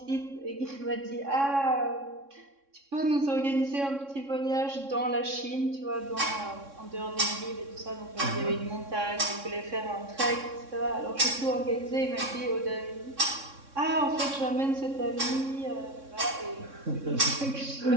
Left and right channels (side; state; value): left; late; 3.6 ms